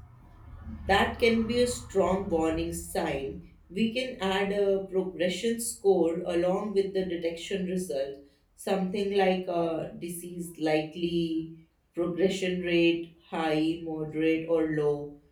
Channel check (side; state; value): both; identical; correlation 1.00